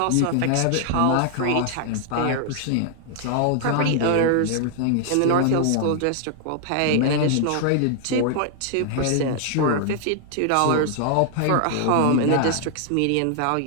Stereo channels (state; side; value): different; both; correlation 0.00